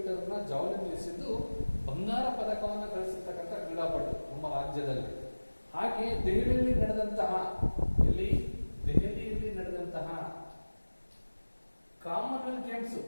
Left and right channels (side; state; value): both; inverted; correlation -1.00